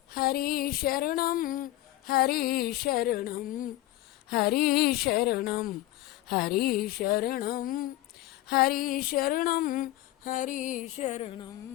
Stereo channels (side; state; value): right; quieter; 16.2 dB